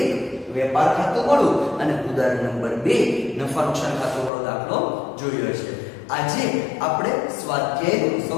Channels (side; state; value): right; drops out; at 4.3 s